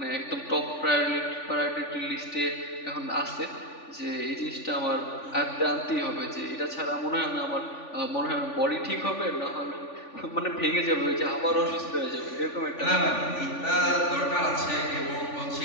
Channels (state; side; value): late; right; 3.5 ms